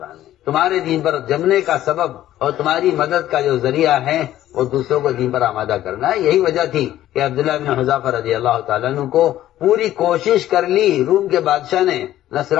میں تمہارے دین پر جمنے کا سبب اور تمہاری مدد کا جو ذریعہ ہے وہ دوسروں کو دین پر آمادہ کرنا ہے. یہی وجہ تھی کہ عبداللہ بن حذافہ رضی اللہ تعالیٰ عنہ کو پوری کوشش کر لی روم کے بادشاہ نے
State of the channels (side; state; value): right; quieter; 13.2 dB